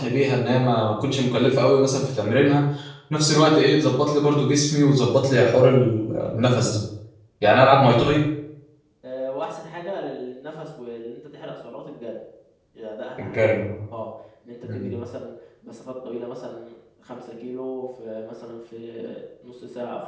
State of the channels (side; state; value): both; identical; correlation 1.00